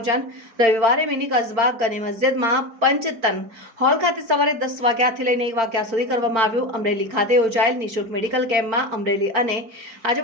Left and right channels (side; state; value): left; late; 4.4 ms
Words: રવિવારે મિની કસ્બા ગની મસ્જિદમાં પંચતન હોલ ખાતે સવારે 10 વાગ્યાથી લઈને 1 વાગ્યા સુધી કરવામાં આવ્યું. અમરેલી ખાતે યોજાયેલ નિઃશુલ્ક મેડિકલ કેમ્પમાં અમરેલી અને